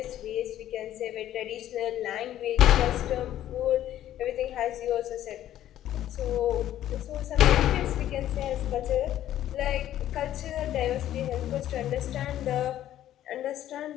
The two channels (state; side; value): quieter; right; 12.3 dB